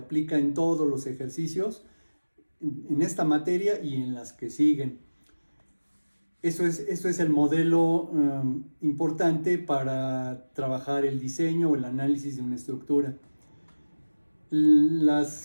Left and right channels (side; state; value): both; inverted; correlation -1.00